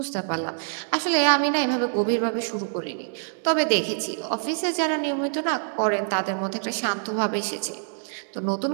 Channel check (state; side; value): silent; left; digital silence